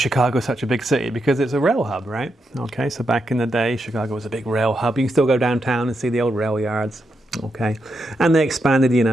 such a big city? Because it's a rail hub, right? Okay, so back in the day, Chicago was a big rail hub. You can still go downtown and see the old rail yards, okay? And they expanded,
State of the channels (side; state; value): both; normal; correlation 0.83